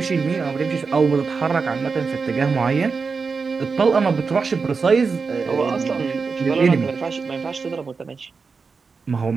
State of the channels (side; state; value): left; quieter; 4.9 dB